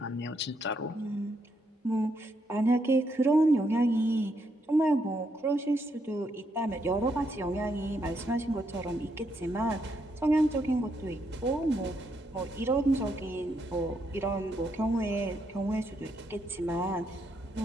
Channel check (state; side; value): normal; both; correlation 0.77